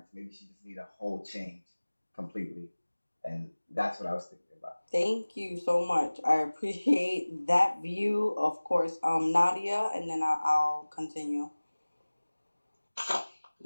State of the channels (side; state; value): both; inverted; correlation -1.00